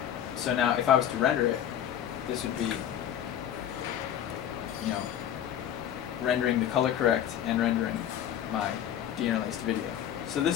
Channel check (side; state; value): right; quieter; 10.3 dB